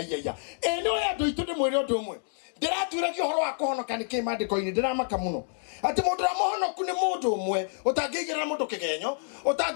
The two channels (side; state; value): right; silent; digital silence